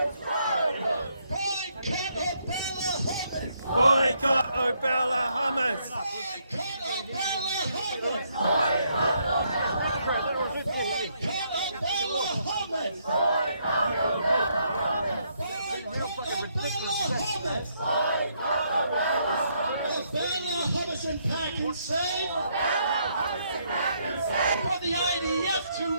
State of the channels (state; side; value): inverted; both; correlation -0.73